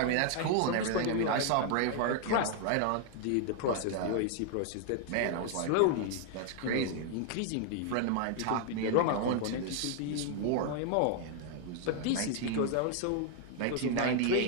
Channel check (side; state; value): both; different; correlation 0.00